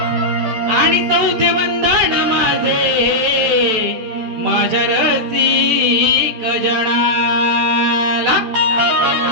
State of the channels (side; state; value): left; late; 14 ms